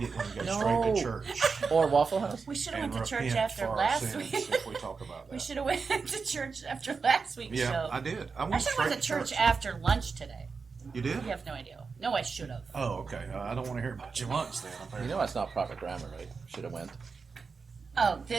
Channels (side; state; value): left; quieter; 5.0 dB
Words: and go No. straight to church. Or Waffle House? We should have and went to church repent after for our last sins week. if we talk about that. We should have went to church after last week's Yeah, show. I did. I I should have went to church after lunch today. You did? You have no idea. No, I should have. Oh, okay. I don't want to hear about your lunch then. You apparently. know that's not proper grammar, right? Should have went. Oh,